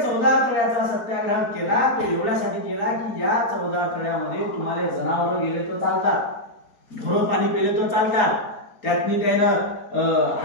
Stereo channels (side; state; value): right; late; 4.3 ms